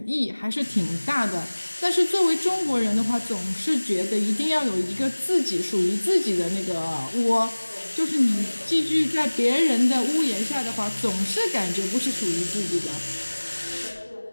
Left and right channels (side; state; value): both; inverted; correlation -1.00